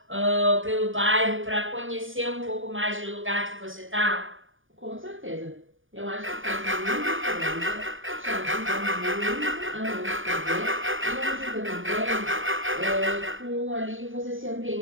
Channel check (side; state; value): left; late; 0.58 ms